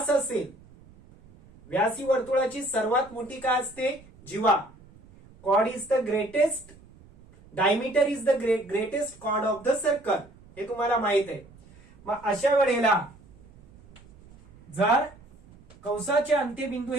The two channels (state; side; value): noise; right; rumble, 24 dB below the sound